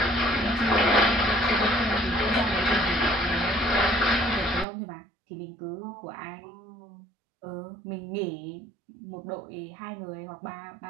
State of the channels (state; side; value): drops out; left; at 4.7 s